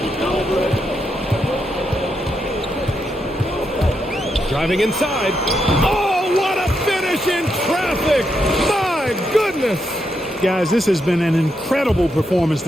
Driving inside. Oh, what a finish in traffic! My goodness! Guys, this has been an incredible performance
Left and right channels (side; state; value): both; normal; correlation 0.82